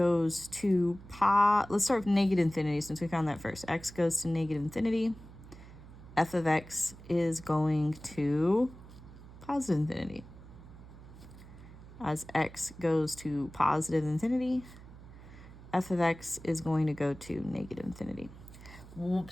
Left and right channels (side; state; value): right; noise; hum, 18 dB below the sound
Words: to let's start with negative infinity since we found that first. X goes to negative infinity. F of x is going to positive infinity. As x goes to positive infinity, f of x is going to go to negative infinity.